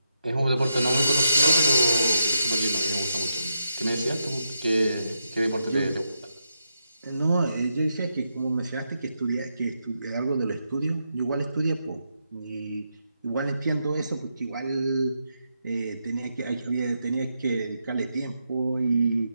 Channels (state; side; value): inverted; both; correlation -0.83